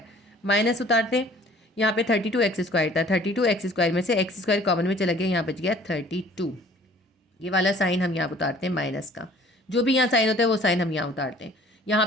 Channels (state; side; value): normal; both; correlation 0.53